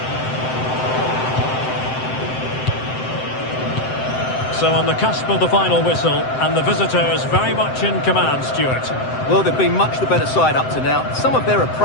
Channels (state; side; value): late; right; 7.8 ms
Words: So on the cusp of the final whistle, and the visitors very much in command, Stuart. Well, they've been much the better side up to now. Some of their